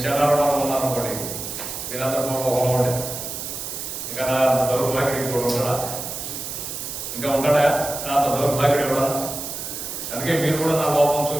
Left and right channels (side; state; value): right; noise; hiss, 7 dB below the sound